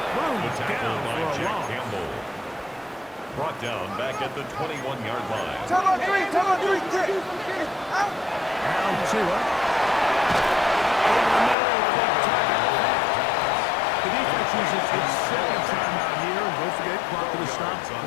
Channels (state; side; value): drops out; right; at 11.6 s